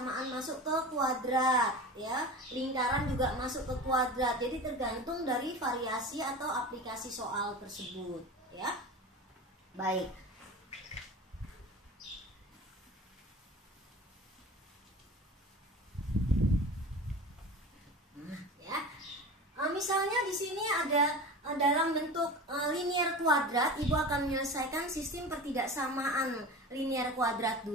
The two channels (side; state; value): both; normal; correlation 0.32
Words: masuk ke kuadrat ya. Lingkaran juga masuk ke kuadrat. Jadi tergantung dari variasi atau aplikasi soal tersebut ya. Baik. Misalnya di sini ada dalam bentuk linier kuadrat, Ibu akan menyelesaikan sistem pertidaksamaan linier kuadrat